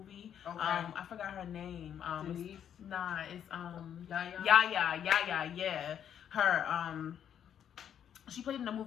Okay. I forgot her name. Denise? It's Yaya? Yeah. Her, she played in a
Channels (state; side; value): quieter; right; 9.1 dB